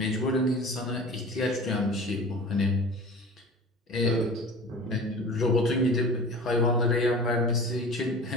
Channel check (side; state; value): both; normal; correlation 0.38